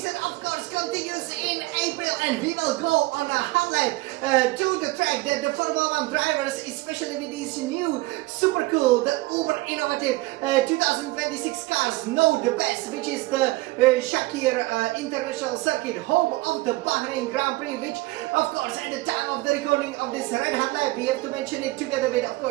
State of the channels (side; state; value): left; quieter; 20.5 dB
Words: of course, continues in April, and we will go on a highlight to the track that the Formula 1 drivers, especially with these new super cool, the uber innovative 2026 cars, know the best, which is the Sakhir International Circuit, home of the Bahrain Grand Prix, which, of course, at the time of the recording of this red hot lap, we have to mention it together with, of